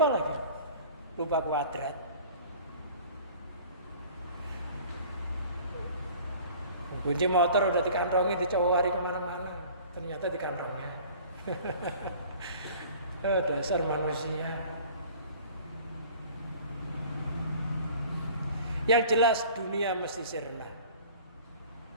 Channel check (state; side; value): inverted; both; correlation -0.46